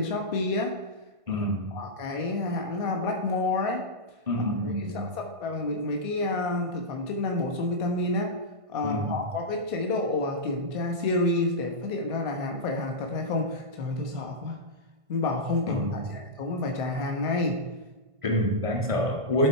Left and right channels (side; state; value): left; late; 1.5 ms